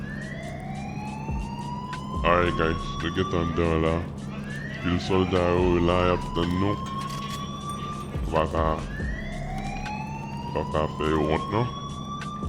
Alright guys, we get under là. Puis le soldat là, il a peut-être nous. Va faire honte non?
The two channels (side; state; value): both; identical; correlation 1.00